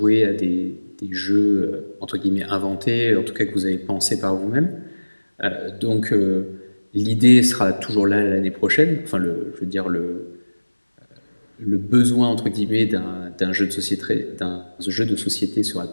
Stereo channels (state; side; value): inverted; both; correlation -1.00